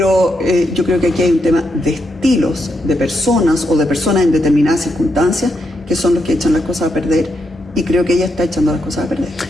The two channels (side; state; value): both; normal; correlation 0.82